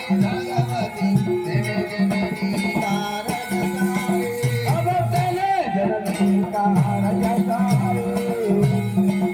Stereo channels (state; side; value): identical; both; correlation 1.00